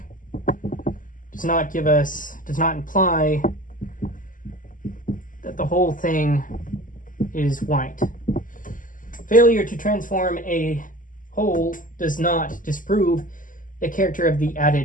does not imply that the whole thing is white. Failure to transform a whole does not disprove the character of the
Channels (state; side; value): late; right; 0.38 ms